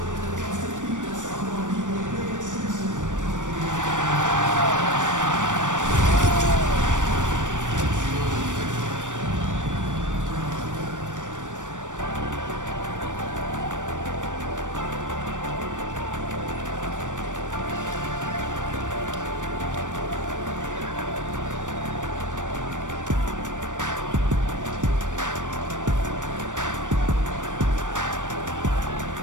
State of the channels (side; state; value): left; late; 0.86 ms